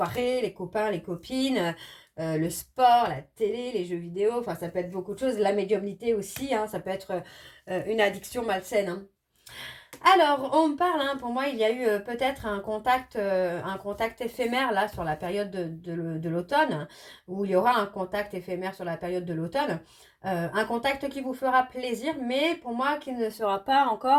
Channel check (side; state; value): both; identical; correlation 1.00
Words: les copains, les copines, le sport, la télé, les jeux vidéo. Enfin, ça peut être beaucoup de choses. La médiumnité aussi, ça peut être une addiction malsaine. Alors, on parle, pour moi, il y a eu peut-être un contact éphémère là sur la période de l'automne, où il y aura un contact éphémère sur la période de l'automne. Un contact qui vous fera plaisir, mais pour moi, qui ne sera pas